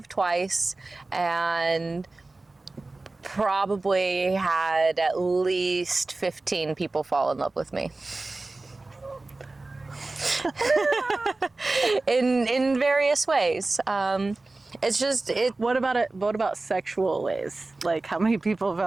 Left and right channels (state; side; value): quieter; left; 3.2 dB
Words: twice, and probably had at least 15 people fall in love with me. in various ways. It's just What about sexual ways? Like, how many people